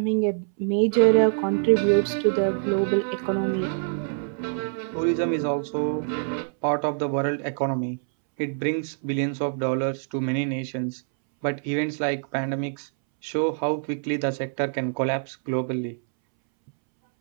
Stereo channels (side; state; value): left; silent; 62 dB below the other